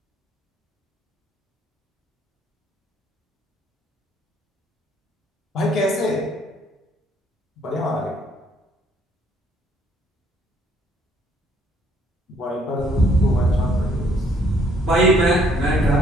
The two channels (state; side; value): normal; both; correlation 0.65